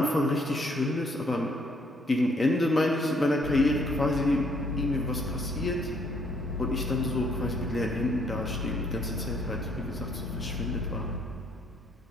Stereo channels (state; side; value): normal; both; correlation 0.67